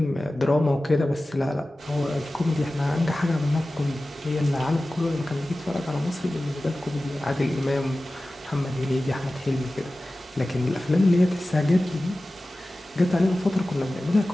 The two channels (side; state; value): both; normal; correlation 0.96